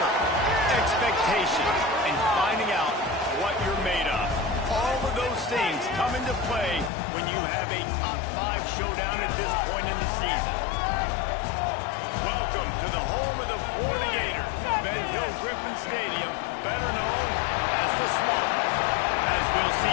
expectation, and finding out what you're made of. All of those things come into play when you have a top 5 showdown at this point in the season. Welcome to the home of the Florida Gators, Ben Hill Griffin Stadium, better known as the Swamp. As we'll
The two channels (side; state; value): right; drops out; at 6.9 s